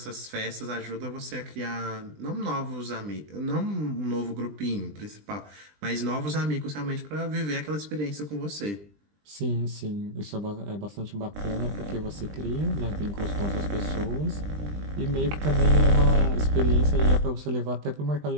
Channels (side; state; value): left; late; 20 ms